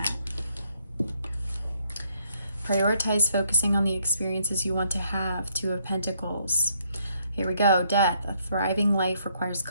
Prioritize focusing on the experiences you want to have. 2 of Pentacles. Here we go. Death. A thriving life requires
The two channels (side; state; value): both; inverted; correlation -0.71